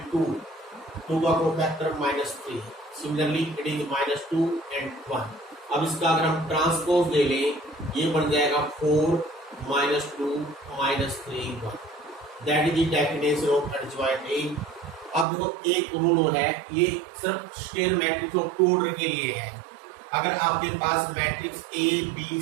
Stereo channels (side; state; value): left; drops out; at 15.2 s